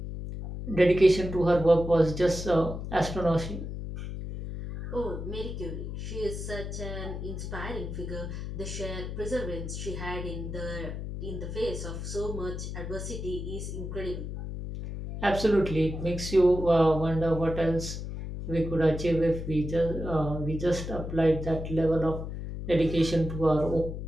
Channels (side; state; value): left; noise; hum, 6 dB below the sound